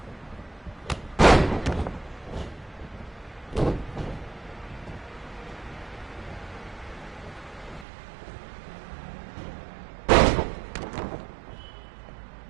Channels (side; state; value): left; drops out; at 7.9 s